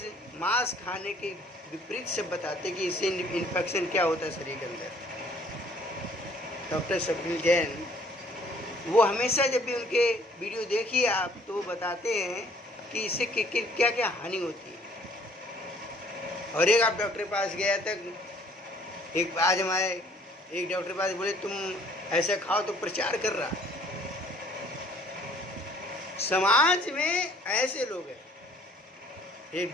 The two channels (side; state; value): both; normal; correlation 0.58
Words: मांस खाने के विपरीत से बताते कि इससे इन्फेक्शन क्या होता है शरीर के अंदर। डॉक्टर स्वप्निल जैन, वो हमेशा जब भी उनके वीडियो देखिए आप, तो वो बताते हैं कि इससे क्या क्या हानि होती है। और एक आप डॉक्टर के पास गया तक, एक आज हमारे एक डॉक्टर के पास बोले तुम ऐसा खाओ, तो प्रचार कर रहा। समाज में ऐसे लोग हैं, एक